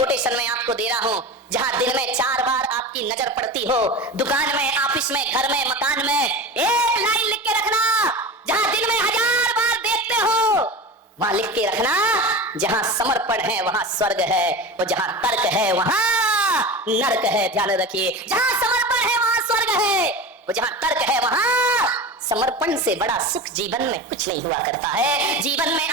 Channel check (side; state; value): both; normal; correlation 0.28